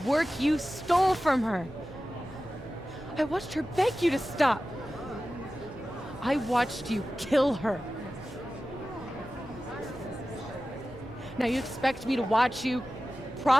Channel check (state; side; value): normal; both; correlation 0.95